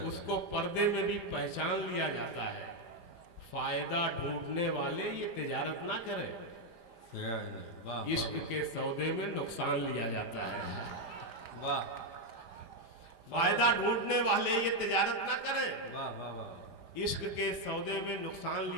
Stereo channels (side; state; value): left; late; 5.0 ms